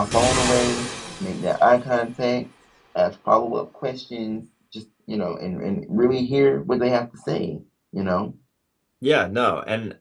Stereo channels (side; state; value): both; identical; correlation 1.00